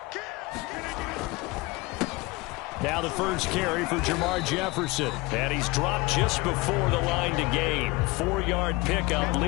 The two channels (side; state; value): right; quieter; 23.6 dB